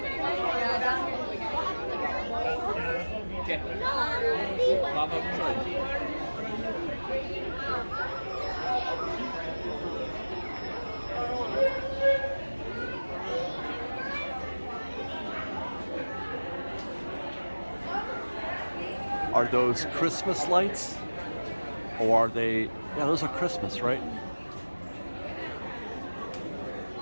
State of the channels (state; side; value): inverted; both; correlation -1.00